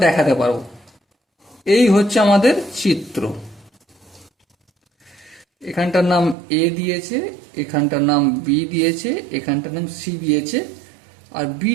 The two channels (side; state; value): left; drops out; at 6.4 s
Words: দেখাতে পারবো। এই হচ্ছে আমাদের চিত্র। এখানটার নাম এ দিয়েছে, এখানটার নাম বি দিয়েছে, এখানটার নাম সি দিয়েছে, আর